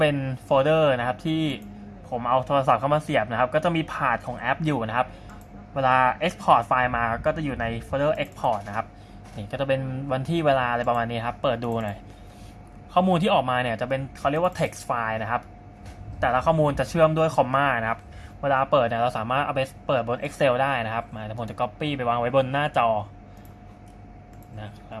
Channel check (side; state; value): both; identical; correlation 1.00